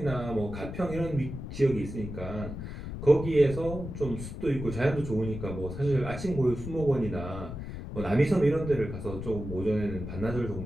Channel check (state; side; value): noise; left; rumble, 8 dB below the sound